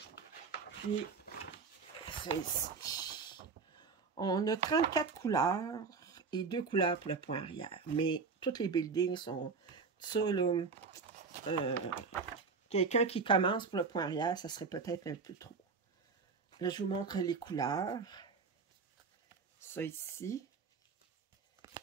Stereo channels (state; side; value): quieter; left; 5.0 dB